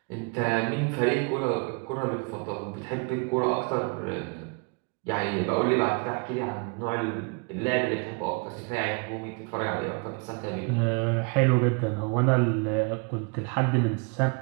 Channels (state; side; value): quieter; left; 33.9 dB